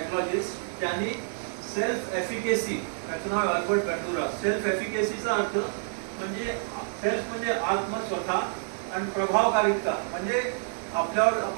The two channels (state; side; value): silent; left; 59 dB below the other